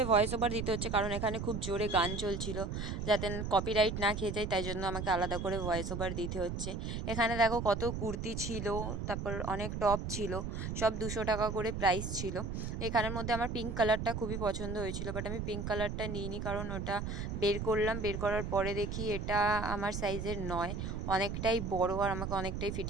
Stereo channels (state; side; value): noise; right; rumble, 4 dB below the sound